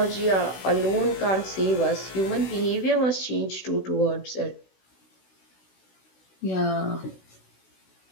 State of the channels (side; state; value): right; late; 17 ms